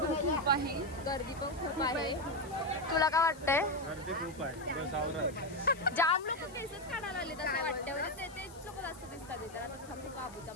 आहे, गर्दी पण खूप आहे. तुला काय वाटतंय? गर्दी खूप आहे. जाम लोक केसेस काढायला आले असं वाटतं. तेच लोक जास्त दिसतात इथे. आता थांबू बाबूचा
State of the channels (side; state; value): left; noise; hiss, 21 dB below the sound